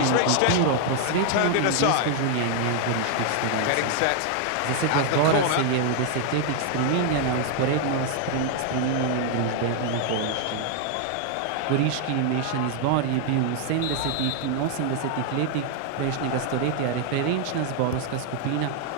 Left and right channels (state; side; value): different; both; correlation 0.00